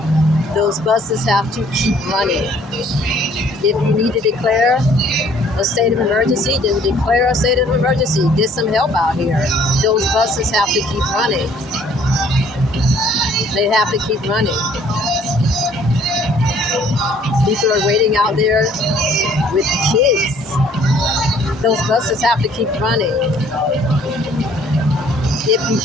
Those buses have to keep running. If you need to declare a state of emergency, then declare a state of emergency. Get some help out here. Those buses have to keep running. They have to keep running. People are waiting out there with kids. Those buses have to keep running. If you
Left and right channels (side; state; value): both; normal; correlation 0.59